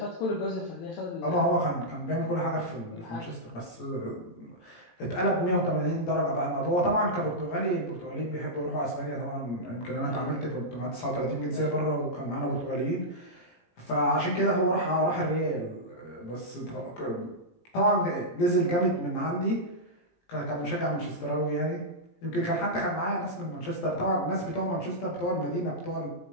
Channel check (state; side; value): late; right; 17 ms